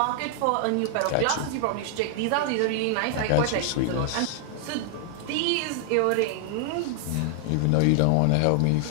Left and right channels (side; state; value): both; different; correlation 0.00